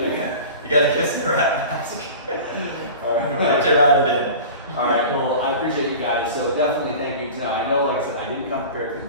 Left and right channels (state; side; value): inverted; both; correlation -0.37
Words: You gotta kiss the rat mask. Alright. Get your rat in. Alright, well, I appreciate you guys, so definitely thank you. Now, I know, like I said, I didn't come prepared